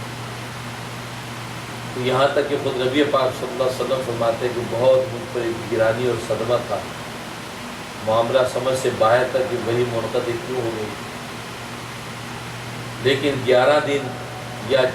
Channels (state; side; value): identical; both; correlation 1.00